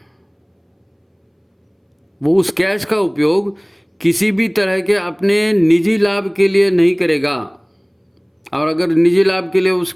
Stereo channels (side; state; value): both; identical; correlation 1.00